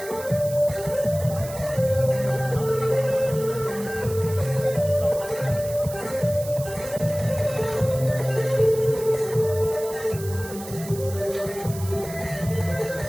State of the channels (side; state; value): right; noise; hiss, 14 dB below the sound